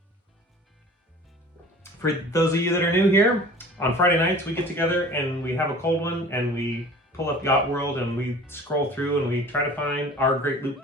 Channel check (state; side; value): normal; both; correlation 0.44